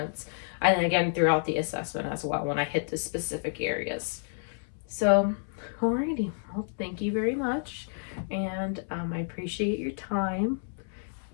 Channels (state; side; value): silent; right; 57 dB below the other